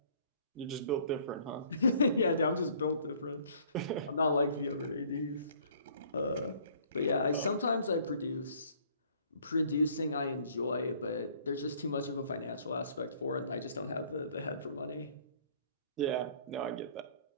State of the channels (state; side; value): inverted; both; correlation -0.57